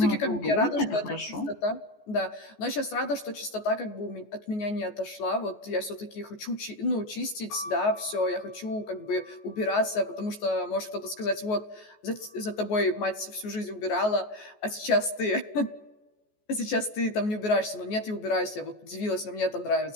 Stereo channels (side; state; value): right; late; 14 ms